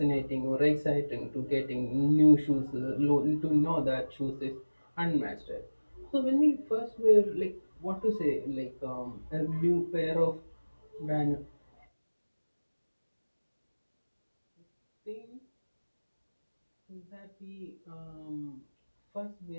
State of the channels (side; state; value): both; inverted; correlation -1.00